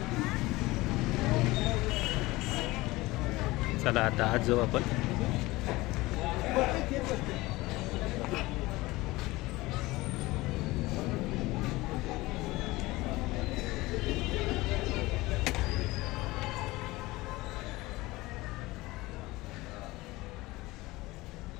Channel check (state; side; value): quieter; right; 20.3 dB